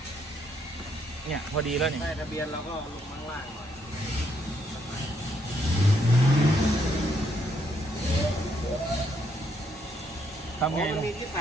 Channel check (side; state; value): both; normal; correlation 0.73